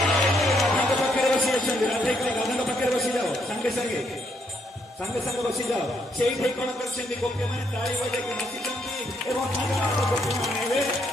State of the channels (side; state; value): both; normal; correlation 0.74